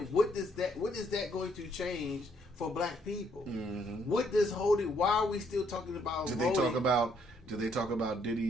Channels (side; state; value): both; normal; correlation 0.70